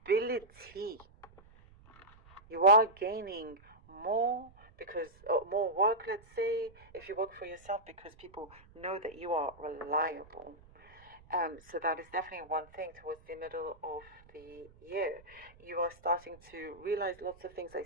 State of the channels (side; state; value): right; noise; rumble, 25 dB below the sound